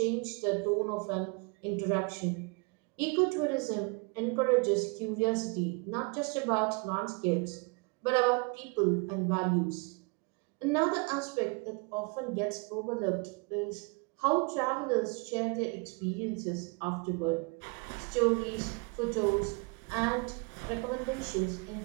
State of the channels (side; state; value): left; quieter; 32.0 dB